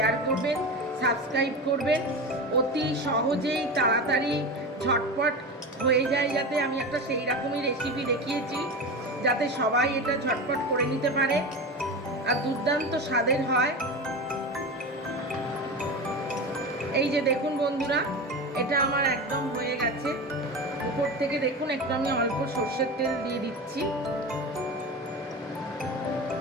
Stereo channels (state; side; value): normal; both; correlation 0.25